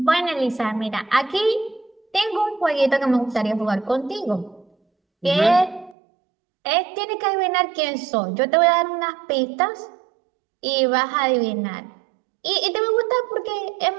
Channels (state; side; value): drops out; left; at 6.0 s